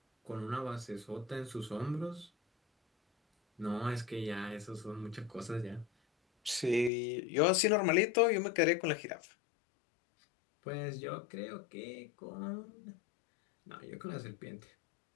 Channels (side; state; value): right; drops out; at 6.9 s